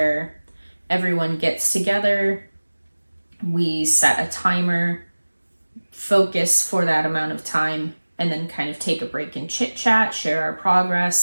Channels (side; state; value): both; inverted; correlation -1.00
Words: everyone gets together, we set a timer, focus for that amount of time, and then kind of take a break and chit chat, share our